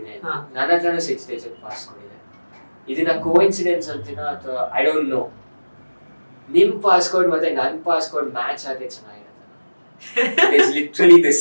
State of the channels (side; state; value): both; inverted; correlation -1.00